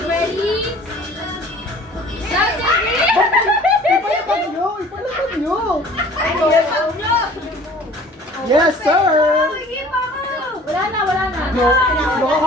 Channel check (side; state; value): both; normal; correlation 0.49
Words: ready? Ipalapag nyo, ipalapag nyo. Yes, sir. Wala na. No,